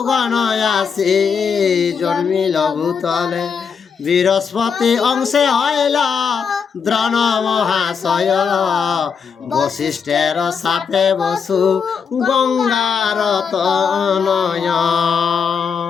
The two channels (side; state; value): right; quieter; 6.3 dB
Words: গণ আসি জন্মিল ভূতলে বৃহস্পতি অংশে হইল দ্রণ মহাশয় বশিষ্ঠের সাপে বসু গঙ্গার তনয়।